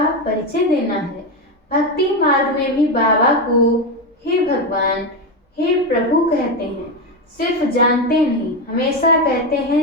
परिचय देना है। भक्ति मार्ग में भी बाबा को हे भगवान, हे प्रभु कहते हैं। सिर्फ जानते नहीं, हमेशा कहते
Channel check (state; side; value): normal; both; correlation 0.13